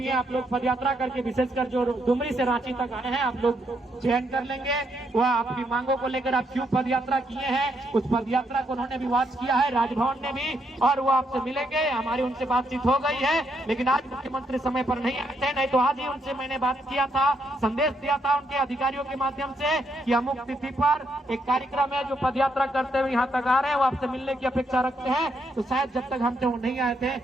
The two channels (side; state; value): both; normal; correlation 0.76